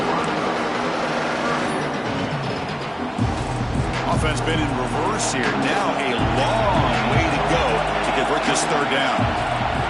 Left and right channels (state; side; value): identical; both; correlation 1.00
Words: Offense been in reverse here. Now a long way to go to convert this third down.